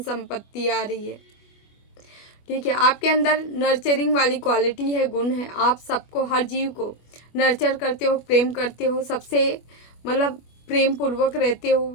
संपत्ति आ रही है, ठीक है। आपके अंदर नर्चरिंग वाली क्वालिटी है, गुण है। आप सबको, हर जीव को नर्चर करते हो, प्रेम करते हो, सबसे मतलब प्रेम पूर्वक रहते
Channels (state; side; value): late; right; 25 ms